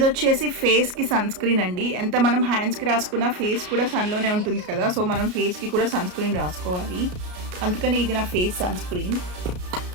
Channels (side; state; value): left; late; 33 ms